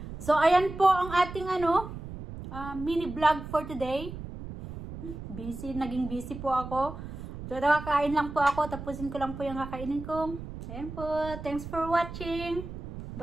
So, ayan po ang ating mini vlog for today. Naging busy po ako. So, nakakain lang po ako. Tapusin ko lang po yung kakainin ko. Ayan po. Thanks for watching.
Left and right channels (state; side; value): noise; right; rumble, 10 dB below the sound